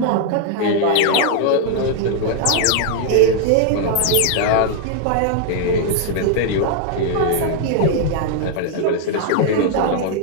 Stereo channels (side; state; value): both; different; correlation 0.00